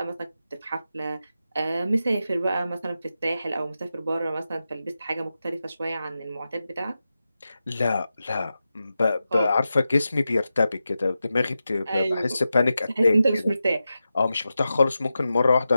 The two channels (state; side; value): inverted; both; correlation -0.91